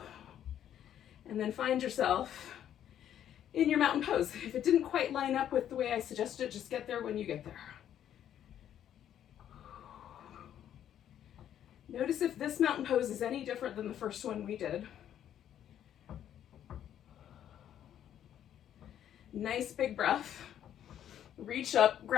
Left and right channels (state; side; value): quieter; right; 10.4 dB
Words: and then find yourself in your mountain pose. If it didn't quite line up with the way I suggested, just get there when you get there. Notice if this mountain pose is any different than the first one we did. Nice big breath. Reach up,